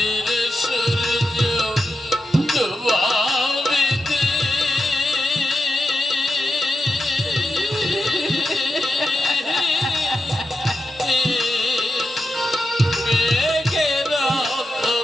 সূর্য ডুবাবিতে মেঘের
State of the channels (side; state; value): both; normal; correlation 0.88